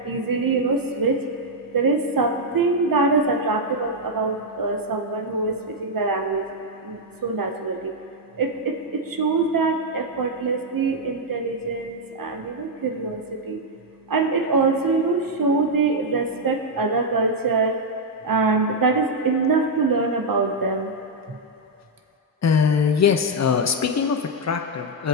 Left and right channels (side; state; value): both; normal; correlation -0.02